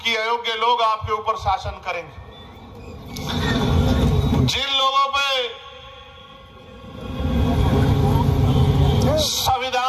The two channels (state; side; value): identical; both; correlation 1.00